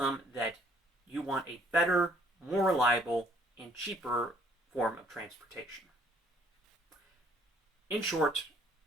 that you want a better, more reliable, and cheaper form of transportation. In short,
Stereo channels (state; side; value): normal; both; correlation 0.62